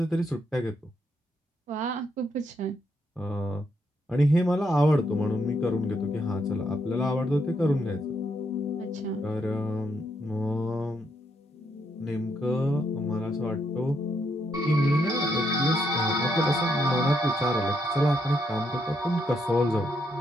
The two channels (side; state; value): both; normal; correlation 0.77